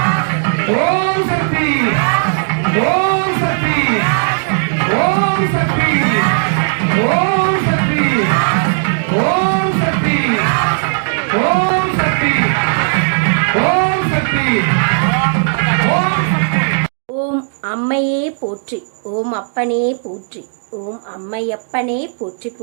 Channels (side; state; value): left; silent; digital silence